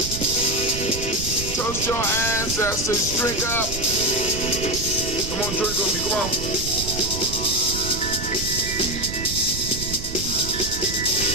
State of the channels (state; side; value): noise; right; rumble, 7 dB below the sound